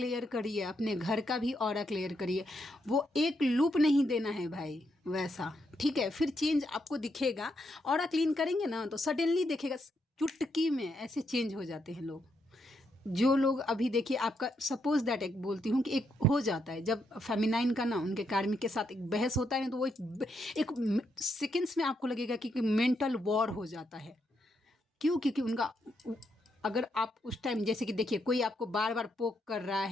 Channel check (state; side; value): normal; both; correlation 0.79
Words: करिए, अपने घर का भी ऑरा क्लियर करिए। वो एक लूप नहीं देना है भाई, वैसा। ठीक है, फिर चेंज आपको दिखेगा। ऑरा क्लीन करेंगे ना तो सडनली देखेगा, चुटकी में ऐसे चेंज हो जाते हैं लोग। जो लोग अभी देखिए, आपका सपोज दैट एक बोलती हूँ कि एक हो जाता है जब फेमिनाइन का ना उनके कार्मिक के साथ एक बहस होता है ना, तो वो एक सेकेंड्स में आपको लगेगा कि मेंटल वॉर हो जाता है। क्यों? क्योंकि उनका, अगर आप उस टाइम जैसे कि देखिए कोई आपको बार बार पोक कर रहा